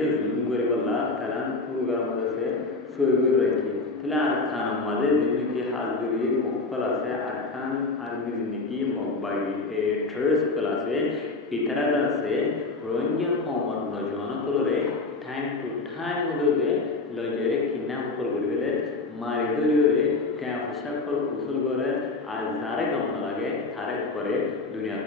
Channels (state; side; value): quieter; right; 3.6 dB